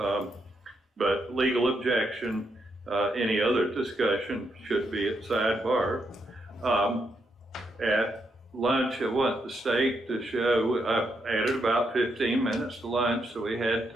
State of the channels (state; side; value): normal; both; correlation 0.79